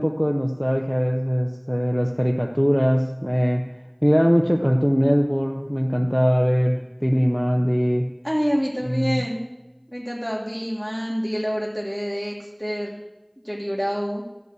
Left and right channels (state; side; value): identical; both; correlation 1.00